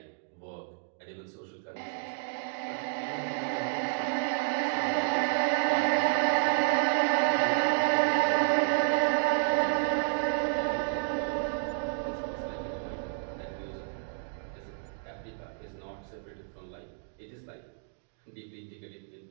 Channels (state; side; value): silent; left; digital silence